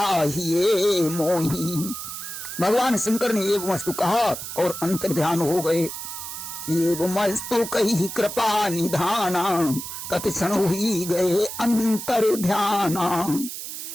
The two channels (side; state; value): right; noise; hiss, 8 dB below the sound